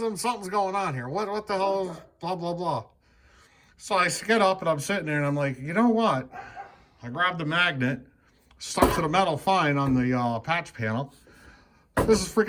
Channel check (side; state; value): both; identical; correlation 1.00